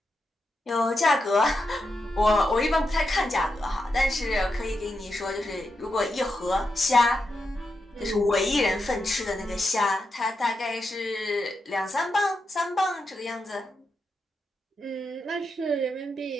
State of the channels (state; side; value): normal; both; correlation 0.86